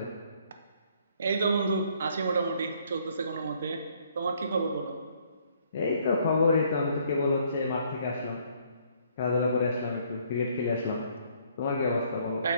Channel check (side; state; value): both; inverted; correlation -0.65